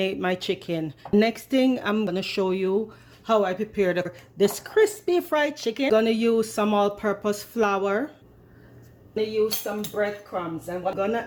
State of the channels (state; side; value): identical; both; correlation 1.00